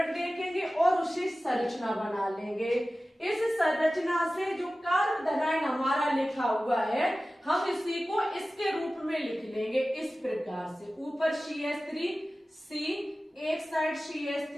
देखेंगे और उसे संरचना बना लेंगे। इस संरचना से जो कार्बोधनाइन हमारा लिखा हुआ है हम इसी को इसके रूप में लिख लेंगे इस प्रकार से, ऊपर CH3 C, एक साइड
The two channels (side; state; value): both; normal; correlation 0.96